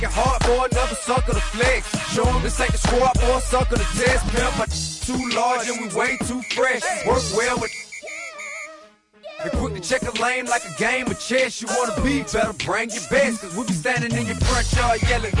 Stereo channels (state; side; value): identical; both; correlation 1.00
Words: hard for another sucker to flex. Show him this ain't the squad for a sucker to test. Pimp, my too large and we way too fresh. Work well with and quick to check a lane like a game of chess. You wanna be better, bring your best. Cause we be standing in your front yard yelling,